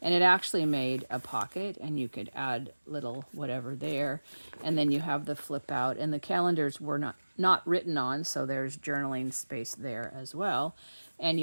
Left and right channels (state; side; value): inverted; both; correlation -1.00